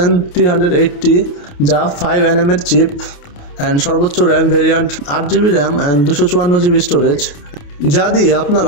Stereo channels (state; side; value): late; right; 28 ms